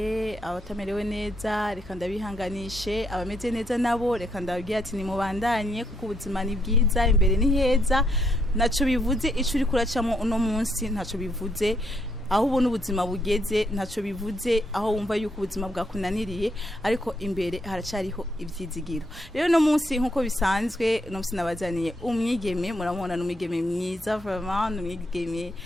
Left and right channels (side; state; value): both; normal; correlation 0.76